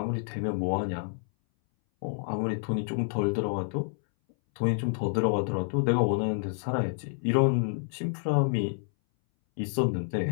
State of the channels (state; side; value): silent; right; 59 dB below the other